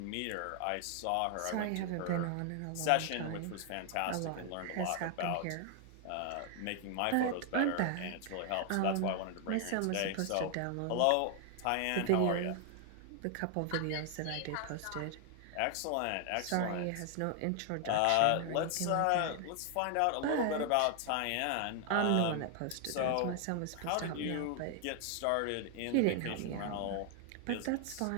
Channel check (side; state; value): both; different; correlation 0.00